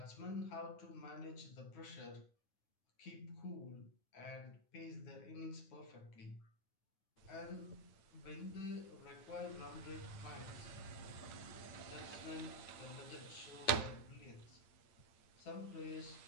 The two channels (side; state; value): right; late; 8.9 ms